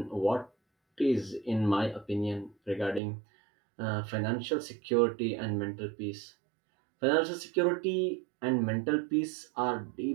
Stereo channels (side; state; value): left; drops out; at 3.0 s